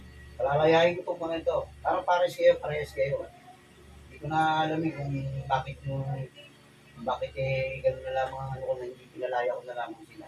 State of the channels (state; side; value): identical; both; correlation 1.00